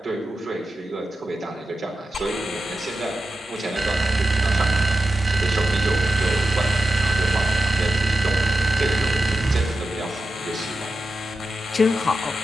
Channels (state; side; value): normal; both; correlation 0.91